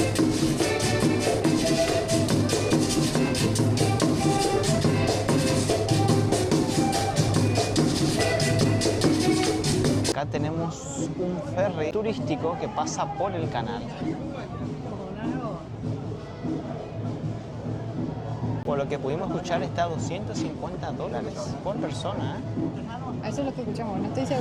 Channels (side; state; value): both; identical; correlation 1.00